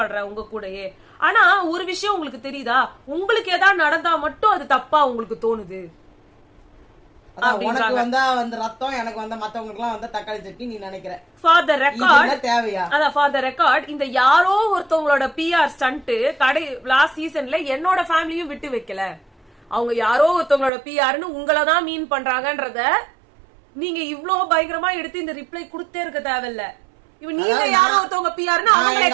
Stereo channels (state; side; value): drops out; left; at 20.7 s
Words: உங்க கூடயே. ஆனா ஒரு விஷயம் உங்களுக்கு தெரியுதா, உங்களுக்கு ஏதாவது நடந்தா மட்டும் அது தப்பா உங்களுக்கு தோணுது. உனக்கு வந்தா வந்து ரத்தம், எனக்கு வந்த மத்தவங்களுக்கு எல்லாம் வந்தா தக்காளி சட்னி நீ நினைக்கிற. ஃபார் த ரெக்கார்ட் தேவையா? அதான் ஃபார் த ரெக்கார்ட் இந்த யாரோ ஒருத்தவங்களோட பிஆர் ஸ்டண்ட் லாஸ்ட் சீசன்ல என்னோட ஃபேமிலியும் விட்டு வைக்கல. அவங்க யாரோ ஒருத்தவங்களோட பிஆர்னு உங்களதான் மீன் பண்றாங்கன்றத நீங்க இவ்வளவு பயங்கரமா எடுத்து இந்த ரிப்ளை கொடுத்தே இருக்க தேவையில்ல. இவன் நீங்க யாரோ ஒருத்தவங்க பிஆர்னு அவங்களை